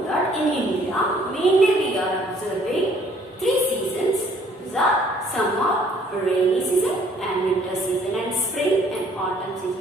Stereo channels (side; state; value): both; normal; correlation 0.60